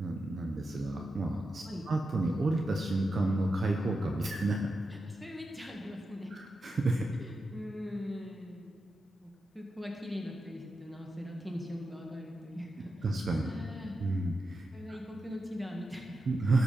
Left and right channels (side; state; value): both; normal; correlation 0.88